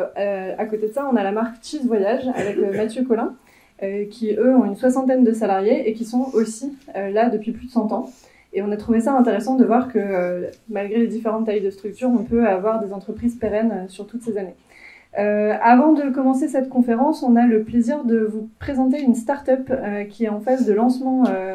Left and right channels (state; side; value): identical; both; correlation 1.00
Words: côté de ça, on a la marque Cheese Voyage avec Mathieu Collin, qui, eux, ont une 60aine de salariés et qui sont aussi là depuis plus de 100 ans. Et on a trouvé ça intéressant de voir que, malgré les différentes tailles de structures, on peut avoir des entreprises pérennes sur toutes ces années. Avant de commencer cette conférence, on a le plaisir de vous présenter une start-up qui est en phase de lancement